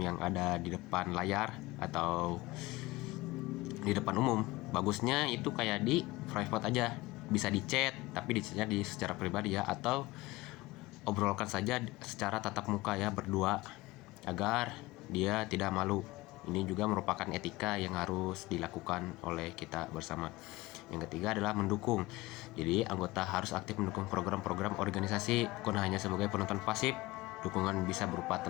ada di depan layar atau di depan umum. Bagusnya itu kayak di private aja, bisa di chat, tapi di chatnya secara pribadi ya, atau obrolkan saja secara tatap muka ya, berdua, agar dia tidak malu. Ini juga merupakan etika yang harus dilakukan oleh kita bersama. Yang ketiga adalah mendukung. Jadi anggota harus aktif mendukung program-program organisasi, bukan hanya sebagai penonton pasif. Dukungan bisa berupa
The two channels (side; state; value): right; quieter; 19.8 dB